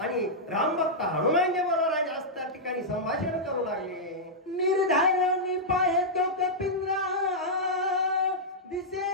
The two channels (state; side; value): normal; both; correlation -0.09